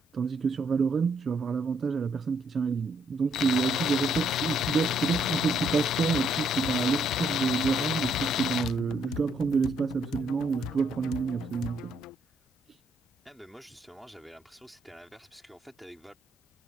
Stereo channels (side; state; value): both; normal; correlation 0.72